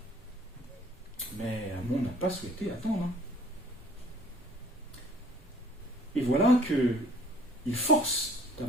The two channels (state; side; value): normal; both; correlation 0.54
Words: Mais Amon n'a pas souhaité attendre. Et voilà qu'il force